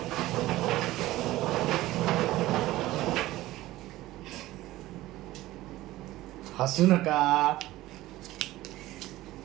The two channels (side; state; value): left; quieter; 16.8 dB